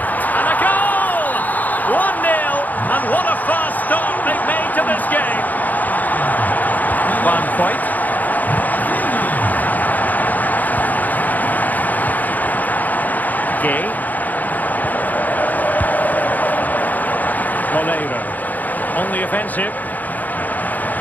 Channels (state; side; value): late; right; 0.082 ms